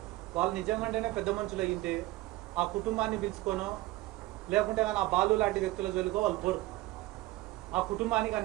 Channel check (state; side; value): quieter; left; 18.4 dB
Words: వాళ్ళు నిజంగానే పెద్ద మనుషులు అయ్యింటే ఆ కుటుంబాన్ని పిలుచుకోనో లేకుంటే కానీ ఆ బాలు లాంటి వ్యక్తుల జోలికో వాళ్ళు పోరు. ఆ కుటుంబానికి